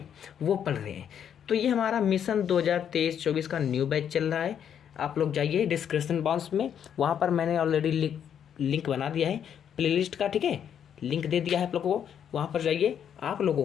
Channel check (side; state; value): right; quieter; 8.7 dB